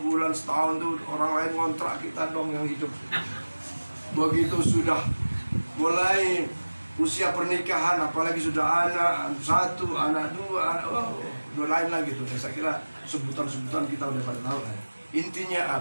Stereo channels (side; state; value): both; inverted; correlation -1.00